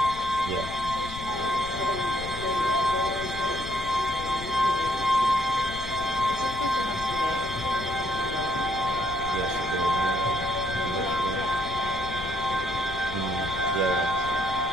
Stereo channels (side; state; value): left; noise; rumble, 11 dB below the sound